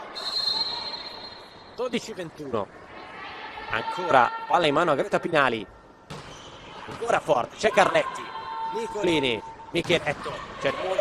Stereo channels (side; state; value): both; identical; correlation 1.00